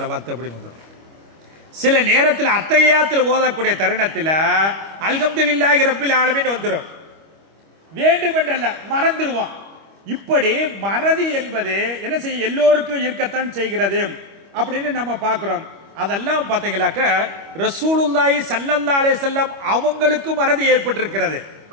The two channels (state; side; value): late; left; 25 ms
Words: அப்படின்னு வந்துடும். சில நேரத்தில் அத்தகையாத்தில் ஓதக்கூடிய தருணத்தில் அல்ஹம்துலில்லாஹி ரப்பில் ஆலமீன் வந்துடும். வேண்டுமென்றல்ல, மறந்துடுவோம். இப்படி மறதி என்பது என்ன செய்ய எல்லோருக்கும் இருக்கத்தான் செய்கிறது அப்படின்னு நம்ம பார்க்கிறோம். அதெல்லாம் பார்த்தீங்களாக்க ரசூலுல்லாஹி ஸல்லல்லாஹு அலைஹி வஸல்லம் அவங்களுக்கும் மறதி ஏற்பட்டிருக்கிறது.